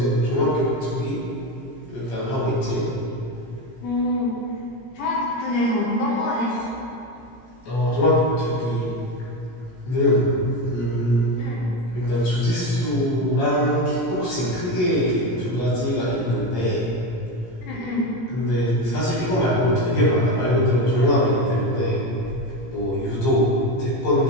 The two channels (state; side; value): late; right; 17 ms